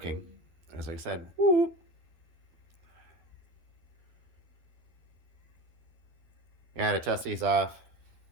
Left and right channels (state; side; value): late; left; 12 ms